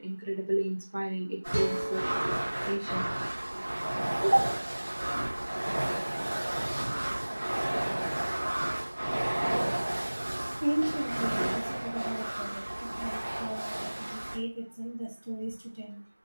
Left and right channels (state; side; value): inverted; both; correlation -1.00